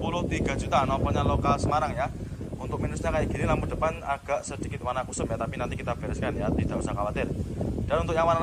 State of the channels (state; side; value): identical; both; correlation 1.00